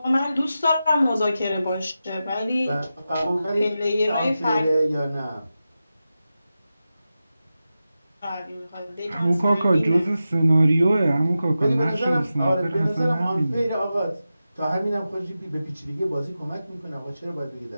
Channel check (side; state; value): both; inverted; correlation -0.92